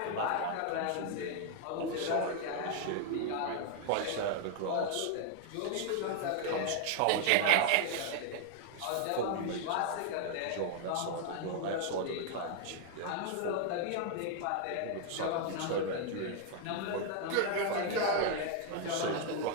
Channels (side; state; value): both; different; correlation 0.00